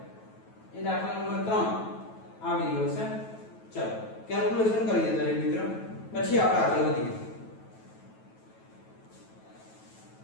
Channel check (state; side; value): late; right; 9.2 ms